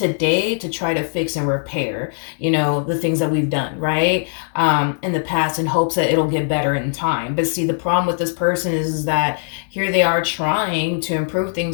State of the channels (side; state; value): right; silent; digital silence